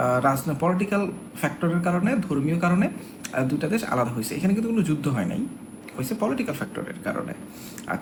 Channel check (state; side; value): identical; both; correlation 1.00